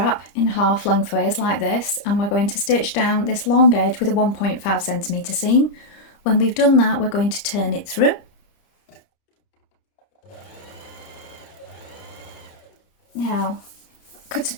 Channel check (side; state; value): right; late; 29 ms